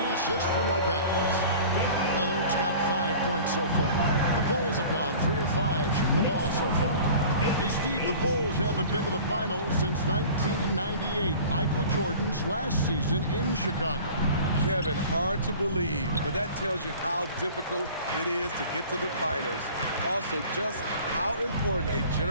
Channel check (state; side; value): inverted; both; correlation -0.43